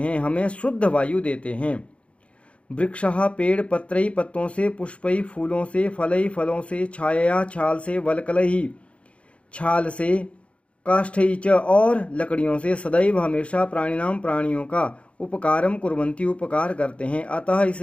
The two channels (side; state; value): right; late; 0.061 ms